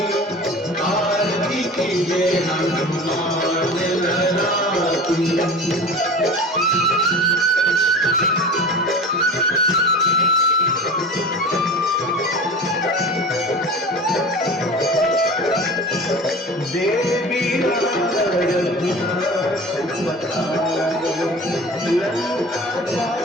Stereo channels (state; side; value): normal; both; correlation 0.36